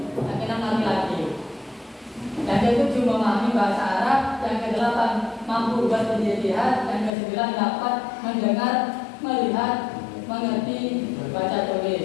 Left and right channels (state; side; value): drops out; right; at 7.1 s